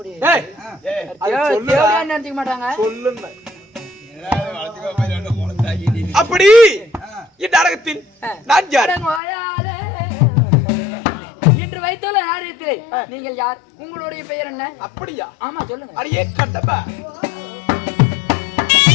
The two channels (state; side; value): drops out; right; at 9.2 s